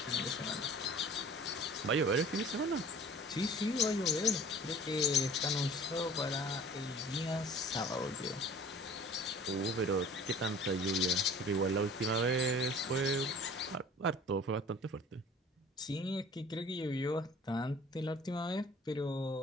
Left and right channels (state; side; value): normal; both; correlation 0.47